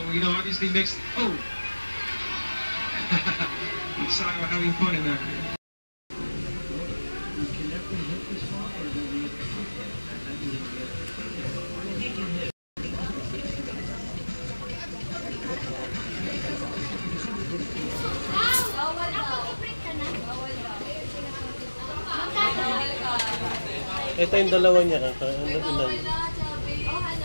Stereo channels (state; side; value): inverted; both; correlation -1.00